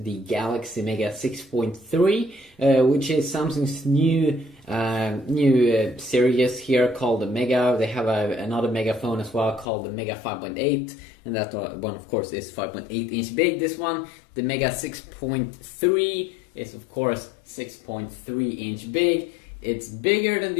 Galaxy Mega 6.3, which is Samsung's new series here called the Mega. They have another Mega phone as well called the Mega 5.8, and that one of course is 5.8 inch big. This one, the Mega 6.3, is of course 6.3 inch big. It's bigger than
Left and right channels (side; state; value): right; drops out; at 9.7 s